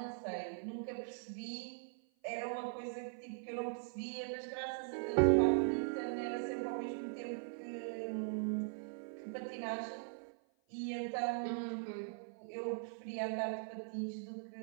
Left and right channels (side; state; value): left; silent; 51 dB below the other